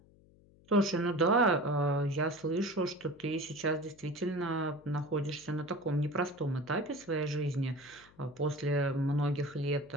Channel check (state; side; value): noise; left; hum, 27 dB below the sound